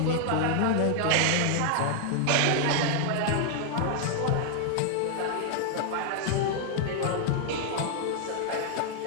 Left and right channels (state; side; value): different; both; correlation 0.00